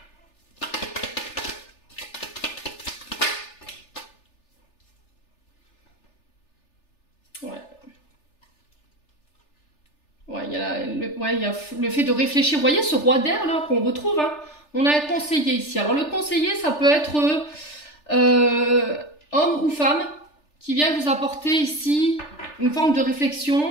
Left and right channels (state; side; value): late; right; 3.4 ms